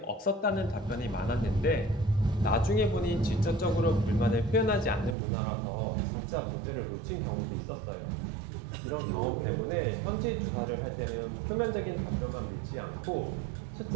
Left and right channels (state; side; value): drops out; left; at 5.2 s